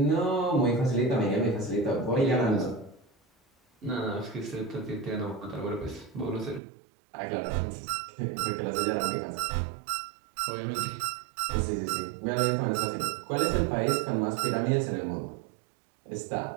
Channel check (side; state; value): left; drops out; at 6.6 s